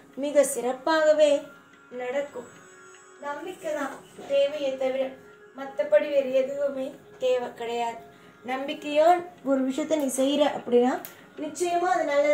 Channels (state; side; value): identical; both; correlation 1.00